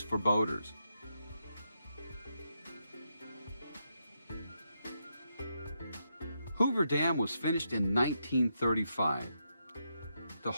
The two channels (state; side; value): inverted; both; correlation -0.82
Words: for boaters. Hoover Dam was finished in 1935 to